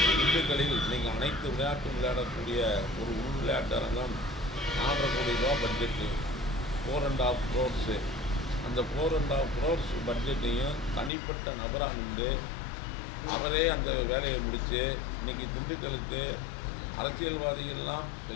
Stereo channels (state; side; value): drops out; right; at 11.1 s